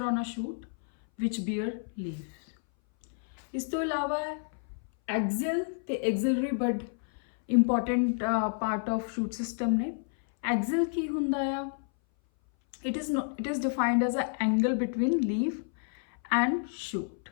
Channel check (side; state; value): right; silent; 58 dB below the other